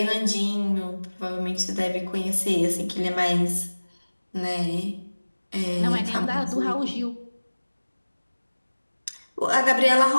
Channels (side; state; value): both; inverted; correlation -1.00